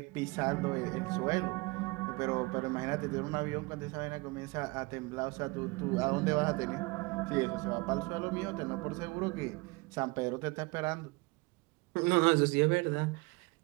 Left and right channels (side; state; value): left; quieter; 24.9 dB